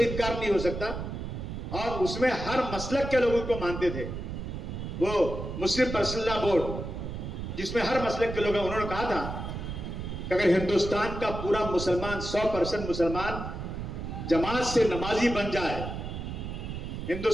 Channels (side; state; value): right; noise; rumble, 6 dB below the sound